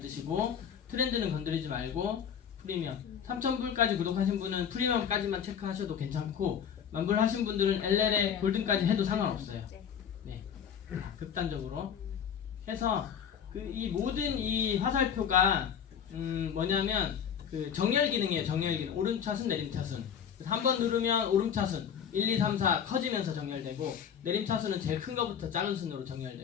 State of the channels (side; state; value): right; quieter; 8.1 dB